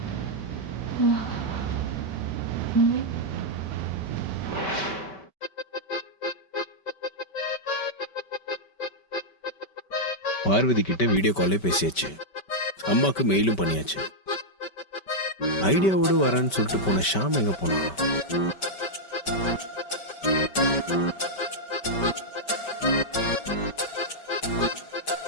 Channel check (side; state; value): right; late; 5.2 ms